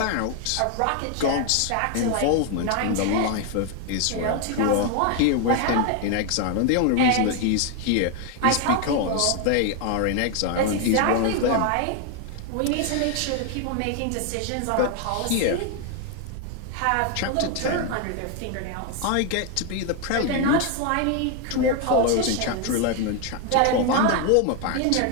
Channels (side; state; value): both; different; correlation 0.01